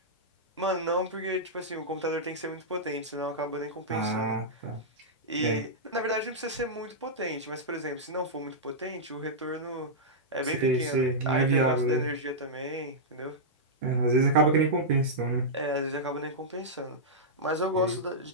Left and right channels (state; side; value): normal; both; correlation -0.10